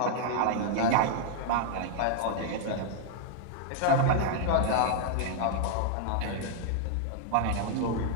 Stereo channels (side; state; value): both; different; correlation -0.01